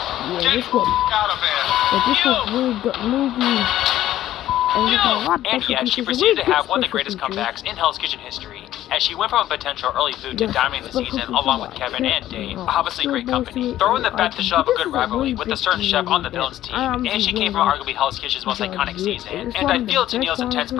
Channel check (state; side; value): quieter; right; 13.3 dB